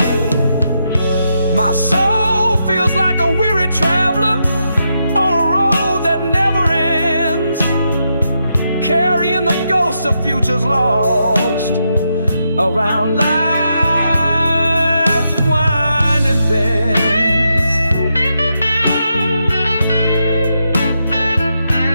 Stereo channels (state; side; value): inverted; both; correlation -0.83